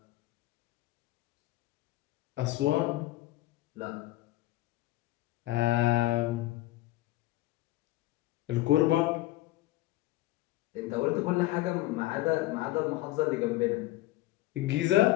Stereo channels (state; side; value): quieter; right; 17.1 dB